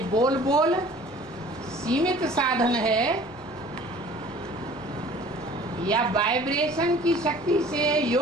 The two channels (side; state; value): both; normal; correlation 0.49